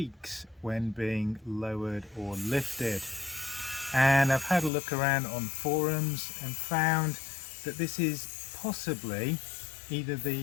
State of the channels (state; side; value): drops out; right; at 4.7 s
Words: when being lowered or lifted. And I've had a look around on forums and found that this is possibly either